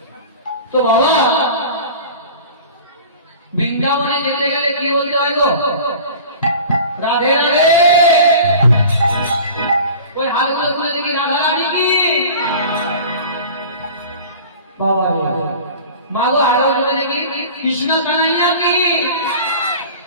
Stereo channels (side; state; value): both; inverted; correlation -0.40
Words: তো বাবা, বৃন্দাবনে যেতে গেলে কি বলতে হয় গো? রাধে রাধে। ওই হাতগুলো তুলে দেখি রাধা রানী কি বাবা রে। মাগো হাতগুলো তুলে দেখি কৃষ্ণ কানাইয়া কি।